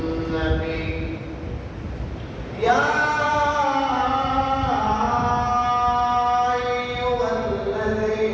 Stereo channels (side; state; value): both; identical; correlation 1.00